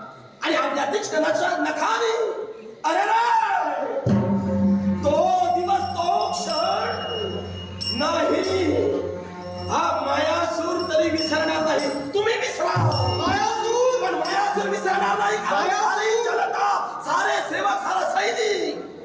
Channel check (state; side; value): identical; both; correlation 1.00